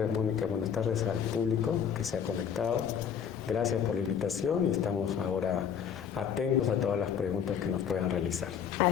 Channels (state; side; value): quieter; right; 7.8 dB